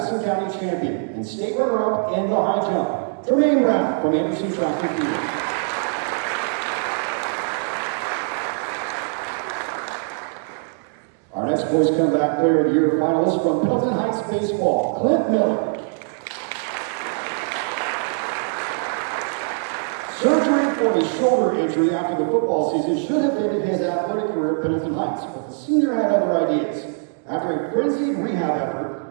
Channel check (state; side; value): silent; left; 60 dB below the other